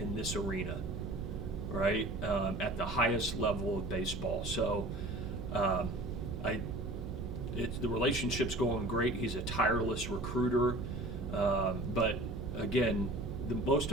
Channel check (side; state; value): right; noise; hum, 8 dB below the sound